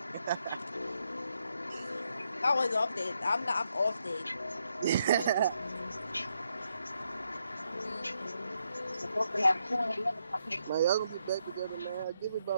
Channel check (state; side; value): inverted; both; correlation -0.80